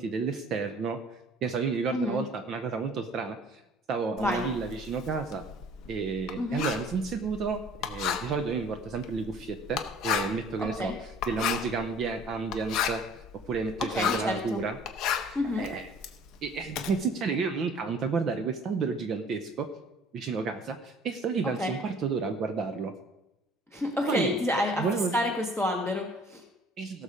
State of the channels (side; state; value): both; normal; correlation 0.52